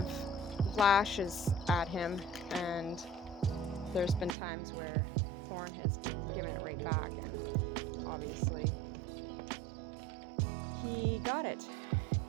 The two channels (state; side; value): drops out; left; at 4.4 s